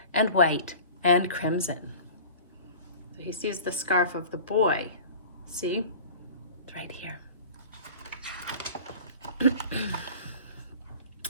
and white and crimson. So he sees the scarf of the boy. See? It's right here.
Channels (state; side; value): inverted; both; correlation -0.40